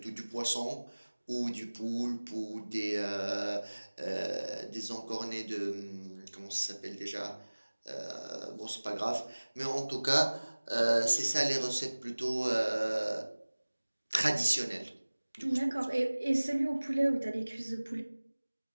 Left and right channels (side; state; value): both; inverted; correlation -1.00